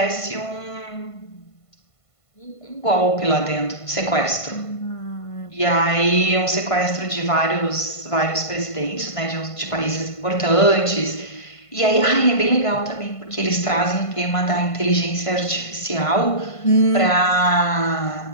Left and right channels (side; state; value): right; late; 1.5 ms